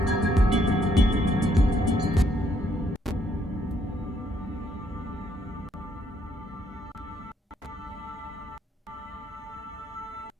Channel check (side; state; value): both; normal; correlation 0.71